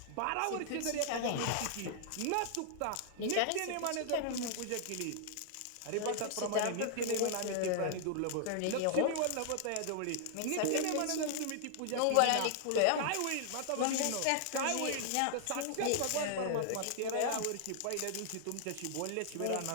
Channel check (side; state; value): both; different; correlation -0.01